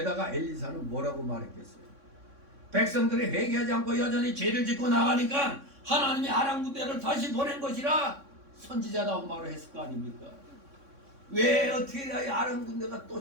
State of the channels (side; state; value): left; late; 3.6 ms